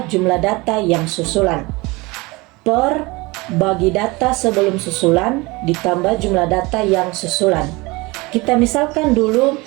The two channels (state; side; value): quieter; left; 23.8 dB